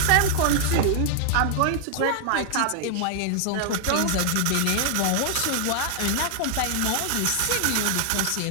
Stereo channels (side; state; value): both; different; correlation 0.00